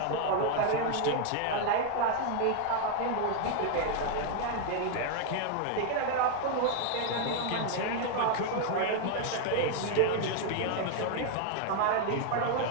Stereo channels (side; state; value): both; different; correlation 0.00